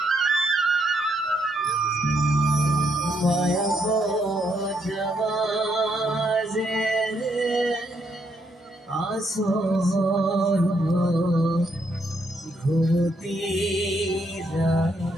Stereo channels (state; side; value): normal; both; correlation 0.75